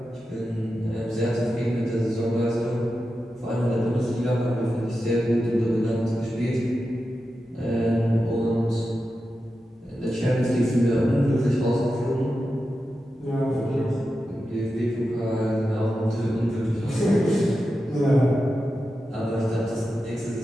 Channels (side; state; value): both; normal; correlation 0.91